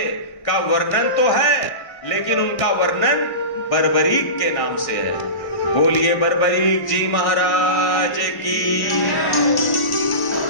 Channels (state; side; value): late; right; 1.4 ms